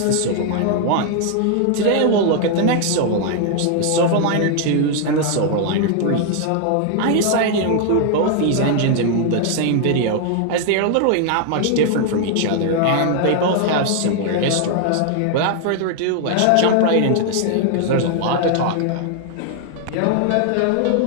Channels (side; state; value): both; different; correlation 0.00